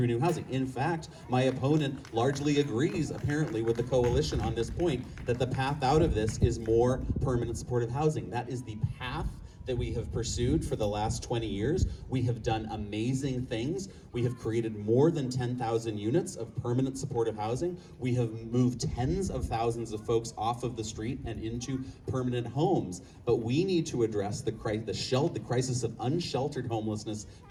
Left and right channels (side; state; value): both; identical; correlation 1.00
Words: housing. In fact, my opponent largely agrees, apparently, with the coalition on this point, that the path out of this is more permanent supportive housing. That is the path that we have pursued for the last 20 years. We have done amazing things. We have created more than 10,000 units of permanent supportive housing. We have moved tens of thousands of folks off of the street and into permanent homes. But we need to address the crisis of unsheltered homelessness